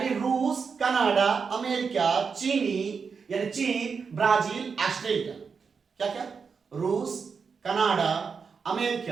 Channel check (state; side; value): quieter; left; 5.6 dB